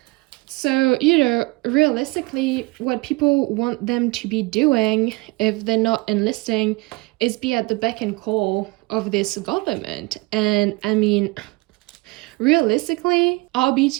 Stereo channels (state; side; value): quieter; left; 24.8 dB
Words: So, you know, realistically, what people want them to be doing if they're not enlisting is be at the beck and call of this government. And I mean, realistically, are